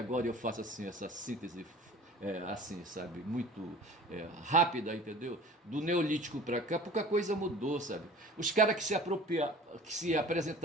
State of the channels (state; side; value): normal; both; correlation 0.43